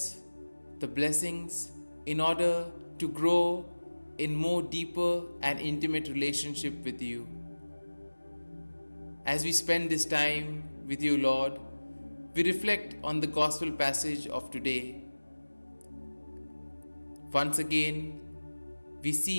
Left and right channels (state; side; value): inverted; both; correlation -1.00